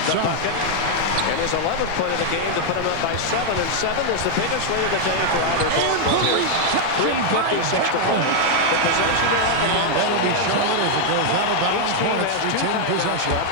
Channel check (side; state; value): both; different; correlation 0.00